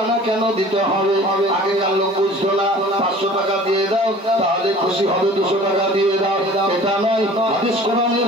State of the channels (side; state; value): both; normal; correlation 0.46